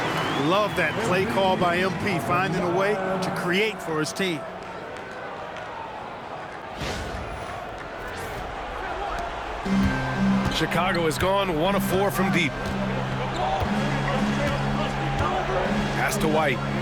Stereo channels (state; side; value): identical; both; correlation 1.00